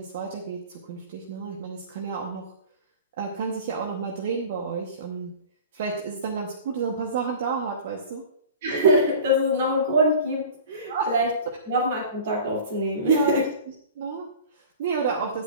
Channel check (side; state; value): both; inverted; correlation -0.39